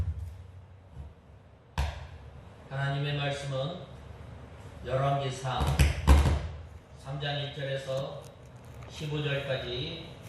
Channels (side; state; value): both; identical; correlation 1.00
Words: 열왕기상 3장 1절에서 15절까지